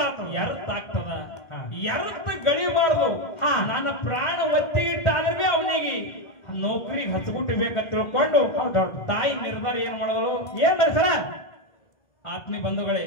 ಆಗ್ತದ ವ್ಯರ್ಥ ಗಳಿಬಾರ್ದು ನನ್ನ ಪ್ರಾಣ ಒತ್ತಿಗಿಟ್ಟಾದ್ರೆ ಅವನಿಗೆ ನೌಕರಿಗೆ ಹಚ್ಬಿಟ್ಟಿಬೇಕಂತ ತಿಳ್ಕೊಂಡು ತಾಯಿ ನಿರ್ಧಾರ ಏನ್ ಮಾಡಿದಳು ಏನ್ ಸರ ಆತ್ಮೀಯ ಬಂಧುಗಳೇ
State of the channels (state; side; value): late; right; 2.1 ms